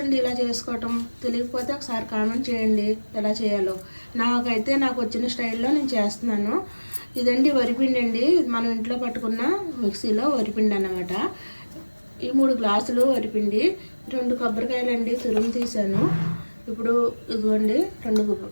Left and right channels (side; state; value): both; inverted; correlation -1.00